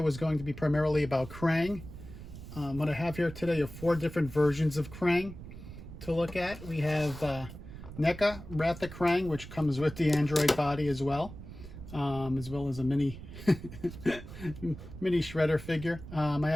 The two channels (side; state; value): right; noise; rumble, 13 dB below the sound